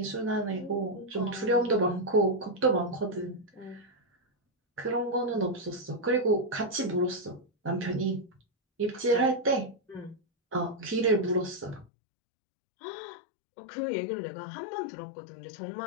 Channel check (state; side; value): drops out; right; at 11.9 s